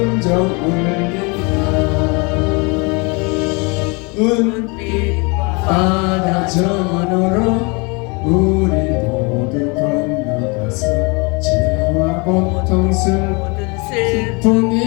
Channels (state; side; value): quieter; right; 29.9 dB